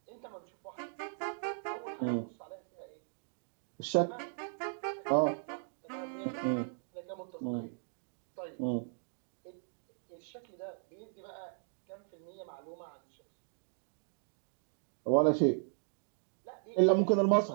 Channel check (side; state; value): left; silent; digital silence